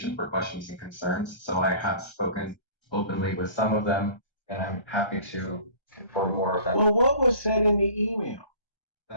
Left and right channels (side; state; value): right; late; 1.3 ms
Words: for questions and concerns. So I have spoken openly with some of them, and I'm happy to inform more of that. Well, what was said in the email?